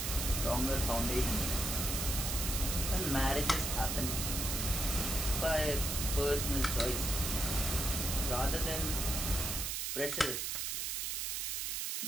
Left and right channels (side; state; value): right; noise; hiss, 1 dB below the sound